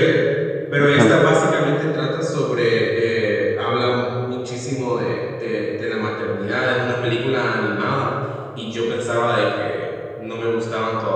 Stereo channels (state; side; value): identical; both; correlation 1.00